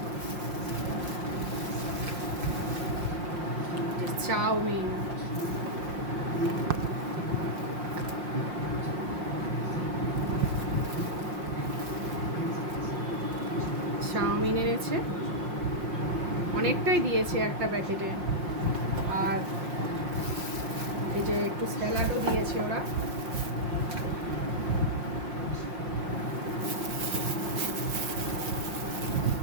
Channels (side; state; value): left; late; 5.6 ms